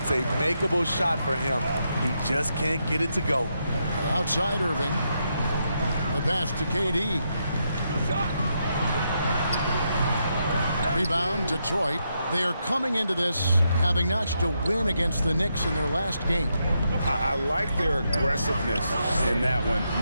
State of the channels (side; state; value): both; inverted; correlation -0.81